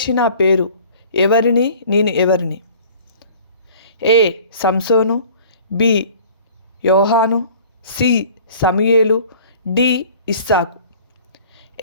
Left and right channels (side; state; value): both; inverted; correlation -0.48